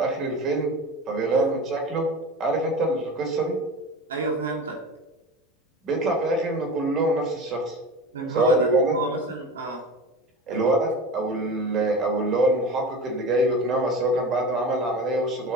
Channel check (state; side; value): normal; both; correlation 0.31